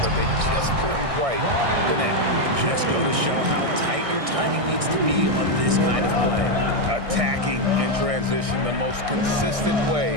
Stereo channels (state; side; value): late; left; 1.6 ms